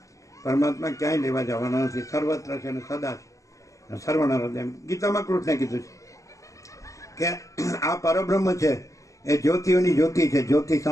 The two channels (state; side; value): late; right; 0.16 ms